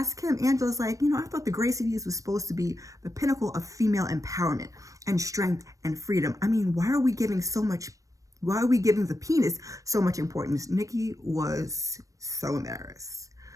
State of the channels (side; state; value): left; late; 0.16 ms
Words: him, Angela's like, I thought the Gracies was supposed to be the pinnacle of female empowerment and strength and freedom. I mean, why are we giving the penis so much importance? Nikki was so embarrassed.